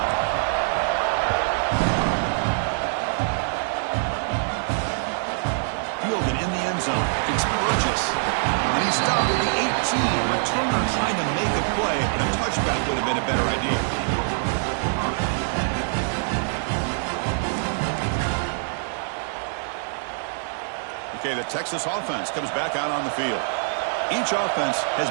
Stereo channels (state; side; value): silent; left; 62 dB below the other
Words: Fielded in the end zone. It's Burgess. And he's stopped at the 18. Returner trying to make a play, and a touchback would have been a better idea. Okay, the Texas offense comes back out on the field. Each offense has